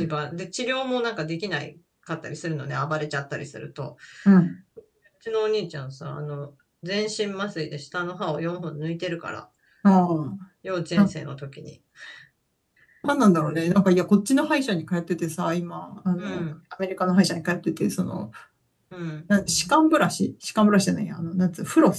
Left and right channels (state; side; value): identical; both; correlation 1.00